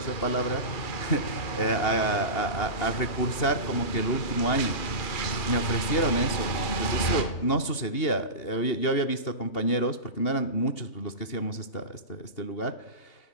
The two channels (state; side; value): late; right; 2.8 ms